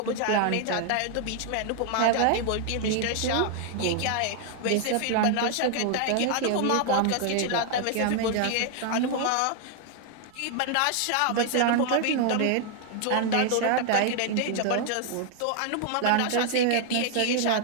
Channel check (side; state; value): both; different; correlation 0.00